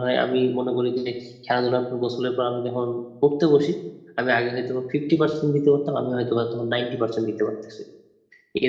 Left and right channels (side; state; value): both; identical; correlation 1.00